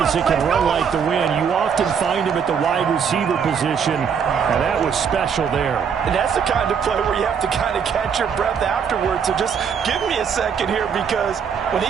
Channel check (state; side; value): quieter; left; 7.0 dB